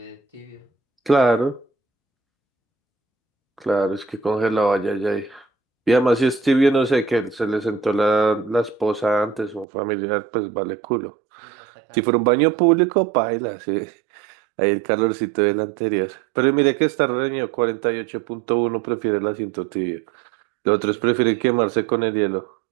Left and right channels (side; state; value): left; drops out; at 9.7 s